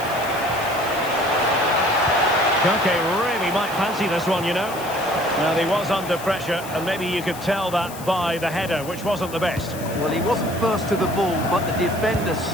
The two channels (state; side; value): noise; left; hiss, 15 dB below the sound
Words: Koke really might fancy this one, you know. Now, he was under pressure, and maybe you could tell that by the header, which wasn't the best. Well, he wasn't first to the ball, but the defender